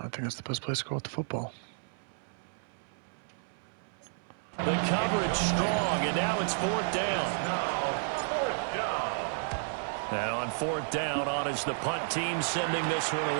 think that's the best place to go with the football. The coverage strong, and now it's fourth down. And on fourth down, on is the punt team sending this one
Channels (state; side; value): silent; left; 57 dB below the other